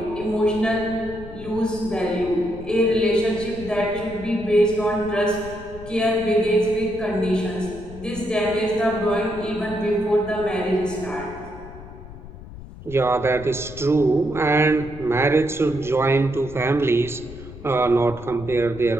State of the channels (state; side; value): noise; left; rumble, 15 dB below the sound